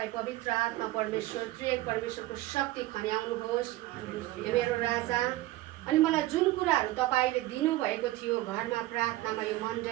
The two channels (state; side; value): quieter; left; 17.1 dB